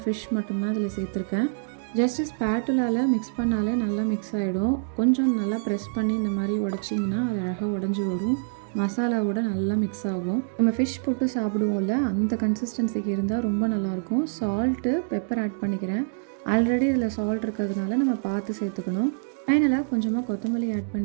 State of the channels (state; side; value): silent; left; digital silence